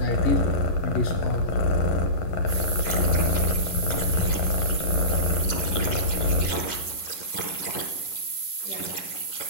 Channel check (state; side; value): late; right; 11 ms